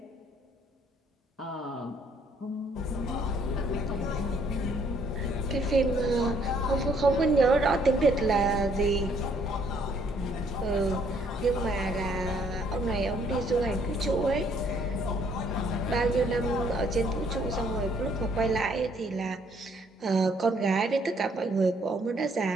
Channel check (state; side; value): normal; both; correlation 0.66